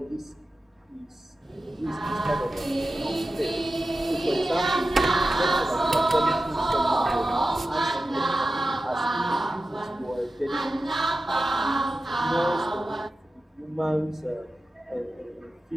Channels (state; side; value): normal; both; correlation 0.93